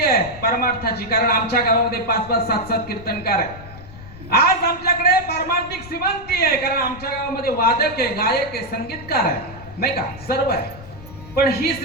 आहे परमार्थाची कारण आमच्या गावामध्ये 5-5 7-7 कीर्तनकार आहे। आज आमच्याकडे पारमार्थिक श्रीमंती आहे कारण आमच्या गावामध्ये वादक आहे गायक आहे संगीतकार आहे नाही का सर्व आहे। पण ही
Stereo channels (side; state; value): left; noise; rumble, 17 dB below the sound